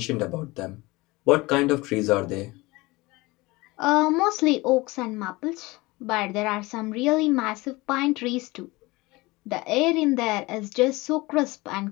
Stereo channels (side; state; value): right; quieter; 22.1 dB